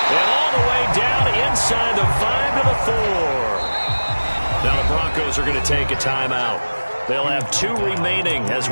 And all the way down inside the 5 to the 4. Now the Broncos are going to take a timeout. They'll have 2 remaining as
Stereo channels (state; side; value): inverted; both; correlation -1.00